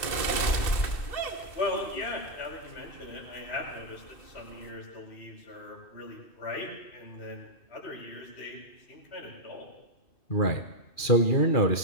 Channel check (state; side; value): late; right; 2.6 ms